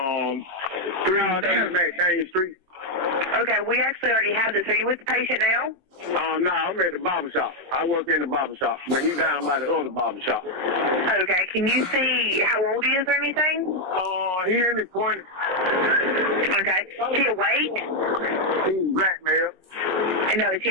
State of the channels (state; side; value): late; left; 22 ms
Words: 330 McDaniel Street. Okay, we actually already have this. Are you with the patient now? No, I'm at the barber shop. I work in the barber shop, but he's down by the other barber shop. Okay, can you see how old he is or anything? He in his 20s. Okay, is he awake? He's black, man. No, is he